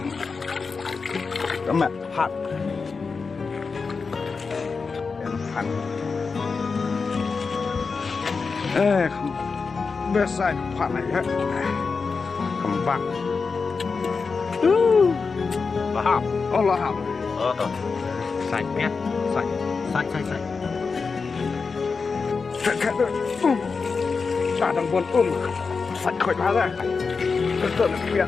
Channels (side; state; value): right; quieter; 4.8 dB